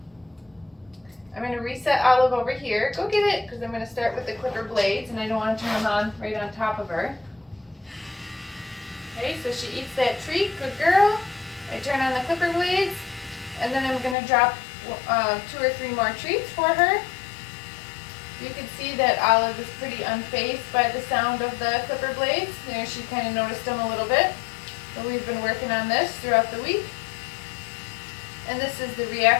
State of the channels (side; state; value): right; drops out; at 14.2 s